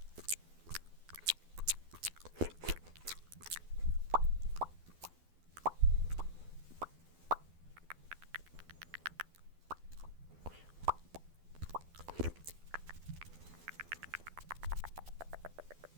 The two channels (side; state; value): left; late; 12 ms